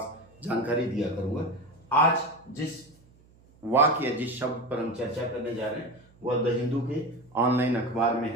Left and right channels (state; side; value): noise; right; hum, 28 dB below the sound